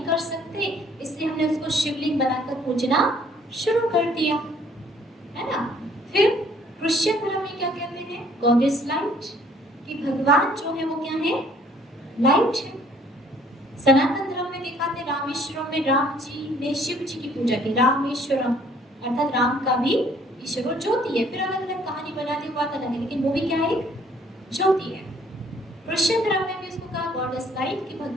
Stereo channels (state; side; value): normal; both; correlation 0.59